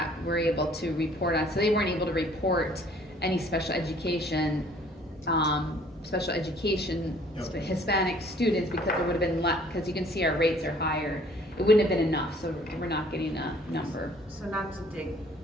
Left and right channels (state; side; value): normal; both; correlation 0.57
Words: were able to report on. So they weren't able to report any special education Hispanic students because it would have been less, because you can see our rates are higher. It wouldn't have been enough, so we're not getting a number. So not to dig,